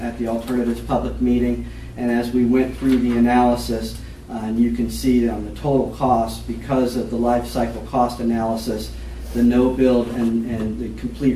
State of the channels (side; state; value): both; identical; correlation 1.00